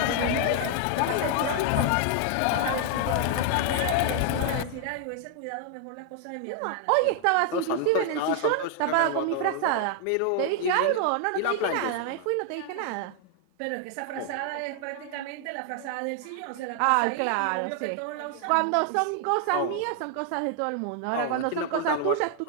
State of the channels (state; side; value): different; both; correlation 0.00